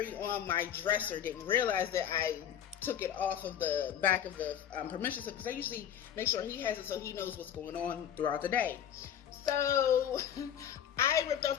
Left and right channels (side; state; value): right; quieter; 9.6 dB